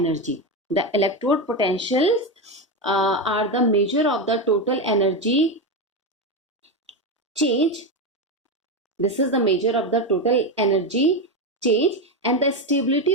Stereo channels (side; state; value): both; normal; correlation 0.13